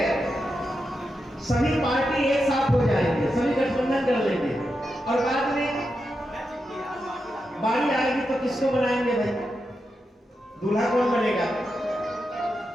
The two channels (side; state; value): both; normal; correlation 0.87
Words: सभी पार्टी एक साथ हो जाएंगे, सभी गठबंधन कर लेंगे और बाद में बारी आएगी तो किसको बनाएंगे भाई? दूल्हा कौन बनेगा?